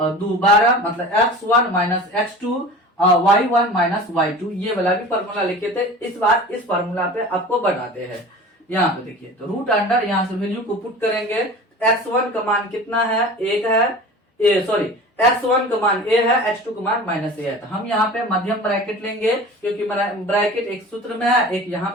2 12, मतलब x1 माइनस x2 और y1 माइनस y2। ये वाला भी फॉर्मूला लिखे थे, इस बार इस फॉर्मूला पे आपको बनाते हैं। यहाँ पे देखिए, तो रूट अंडर यहाँ से वैल्यू को पुट करेंगे, x1 का मान कितना है, 1 है, x1 का मान a है, x2 का मान माइनस a है। तो हम यहाँ पे मध्यम ब्रैकेट लेंगे, क्योंकि ब्रैकेट एक सूत्र में है, एक यहाँ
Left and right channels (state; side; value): normal; both; correlation 0.38